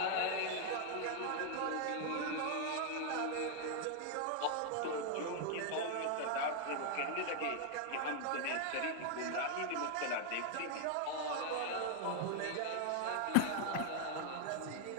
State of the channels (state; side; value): different; both; correlation 0.00